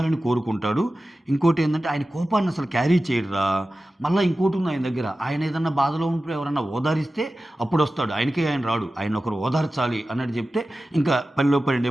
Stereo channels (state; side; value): normal; both; correlation 0.95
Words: కోరుకుంటాడు. ఇంకోటి ఏంటంటే ఆయన కోపాన్ని అసలు క్యారీ చేయడురా. మళ్ళీ ఇంకోటి ఉంది ఆయన దగ్గర, ఆయన ఏదన్నా బాధలో ఉంటే ఎవరన్నా ఓదారిస్తే అప్పుడు వస్తాడు, ఆయనకే ఆయన రాడు, ఆయన ఒకరు ఓదార్చాలి అన్నట్టు చెప్తే ఇంకా పనిలో పని